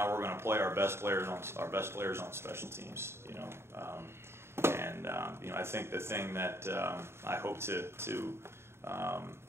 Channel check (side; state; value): left; late; 0.12 ms